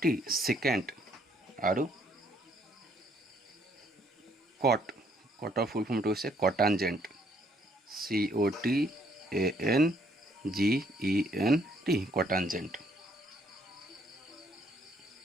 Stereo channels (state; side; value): normal; both; correlation 0.67